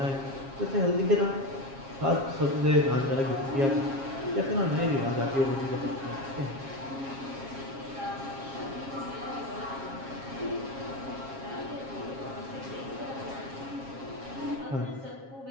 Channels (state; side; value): late; left; 7.4 ms